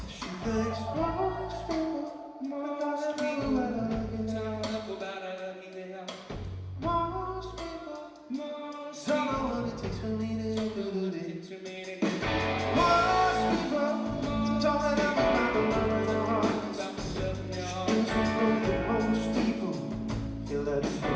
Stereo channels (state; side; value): identical; both; correlation 1.00